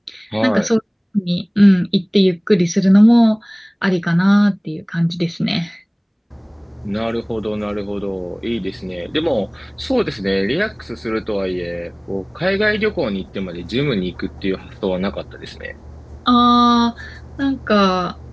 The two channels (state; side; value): identical; both; correlation 1.00